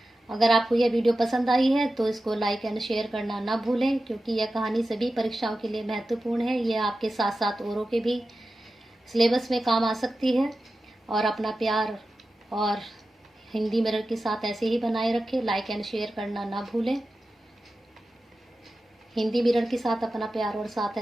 अगर आपको यह वीडियो पसंद आई है तो इसको लाइक एंड शेयर करना ना भूलें, क्योंकि यह कहानी सभी परीक्षाओं के लिए महत्वपूर्ण है। यह आपके साथ साथ औरों के भी सिलेबस में काम आ सकती है। और अपना प्यार और हिंदी मिरर के साथ ऐसे ही बनाए रखें, लाइक एंड शेयर करना ना भूलें। हिंदी मिरर के साथ अपना प्यार और साथ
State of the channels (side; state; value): both; normal; correlation 0.93